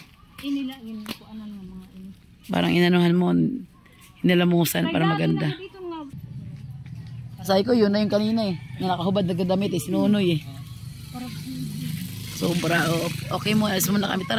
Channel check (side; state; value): both; identical; correlation 1.00